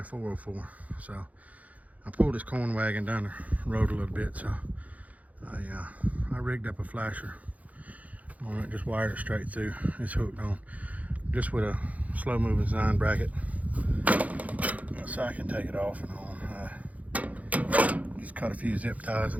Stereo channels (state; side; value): late; left; 0.071 ms